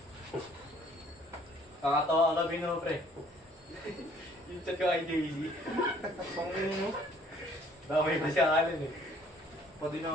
Kakatawa ka kami no, pre. Yung chat ko kay Daisy. Pangin mo. Damay pa siya kalan eh. Pati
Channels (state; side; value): normal; both; correlation 0.59